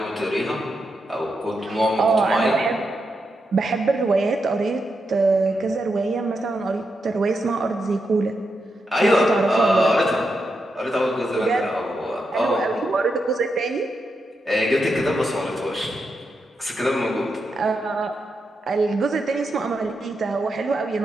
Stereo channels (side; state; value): both; normal; correlation 0.85